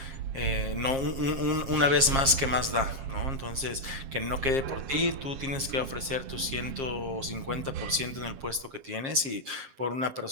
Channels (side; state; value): left; late; 7.5 ms